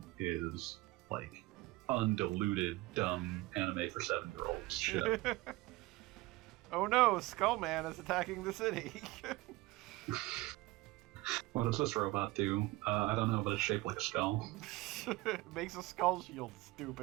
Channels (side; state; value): left; quieter; 20.2 dB